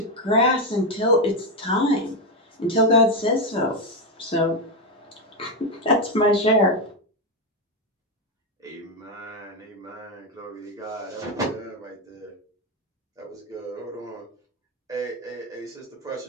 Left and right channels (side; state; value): both; normal; correlation 0.08